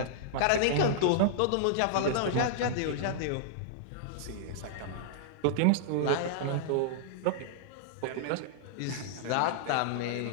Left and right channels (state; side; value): different; both; correlation -0.01